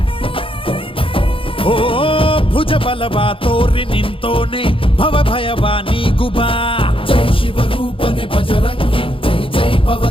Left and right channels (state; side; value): late; right; 0.26 ms